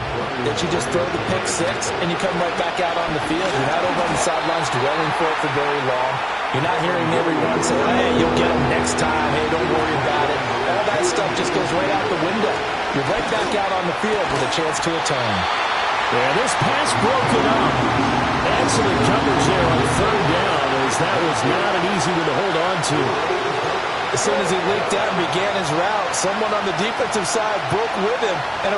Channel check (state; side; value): identical; both; correlation 1.00